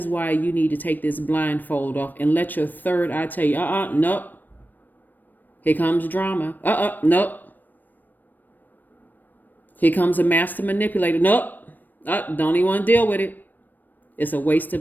why you need to take this blindfold off and let your third eye tell you, nope. Here comes drama. Nope. Here comes a master manipulator. Nope. Don't even want to deal with it. It's a waste of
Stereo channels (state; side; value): late; right; 0.089 ms